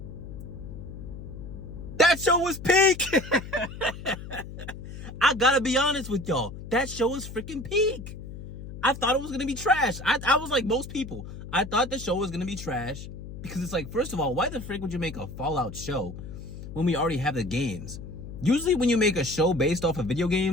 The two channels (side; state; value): left; noise; hum, 11 dB below the sound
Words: That show was peak! I gotta be honest with y'all. That show was freaking peak. I thought it was gonna be trash. I was like most people. I thought the show was gonna be trash because it's like, first of all, why the frick would you make a Fallout show when we already have the games? Usually when you make a show based off of video